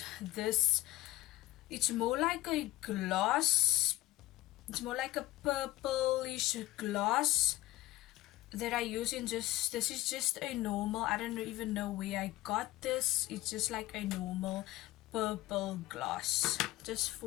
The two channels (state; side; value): quieter; right; 17.0 dB